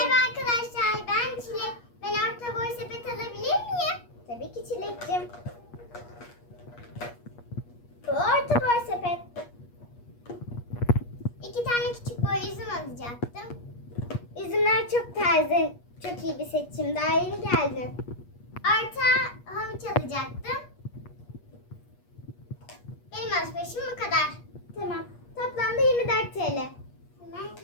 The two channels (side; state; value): right; late; 8.4 ms